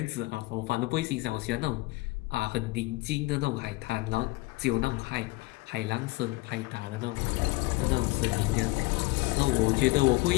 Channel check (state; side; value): quieter; right; 22.3 dB